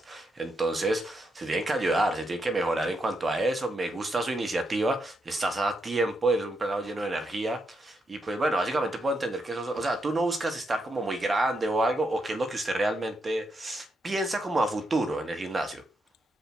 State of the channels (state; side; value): normal; both; correlation 0.82